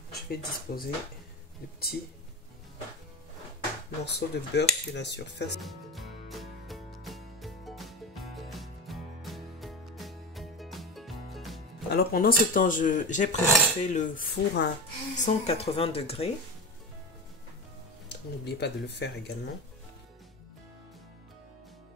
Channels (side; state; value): both; normal; correlation 0.24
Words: Je vais disposer de petits morceaux de beurre sur la surface. Alors pendant ce temps, j'ai préparé le four à 180 degrés. N'oubliez pas de le faire également.